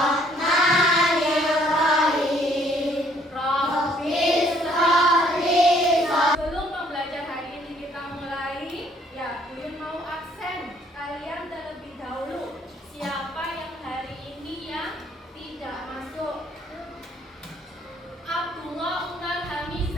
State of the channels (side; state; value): both; normal; correlation 0.63